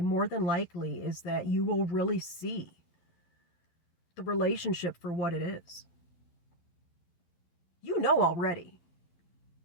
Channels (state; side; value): late; right; 11 ms